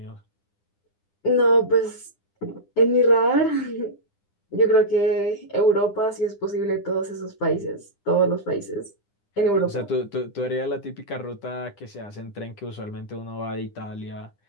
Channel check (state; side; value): late; right; 9.9 ms